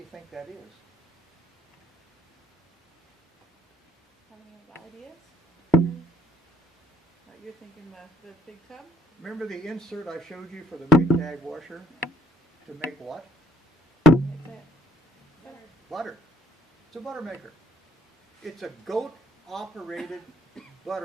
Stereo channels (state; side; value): normal; both; correlation 0.62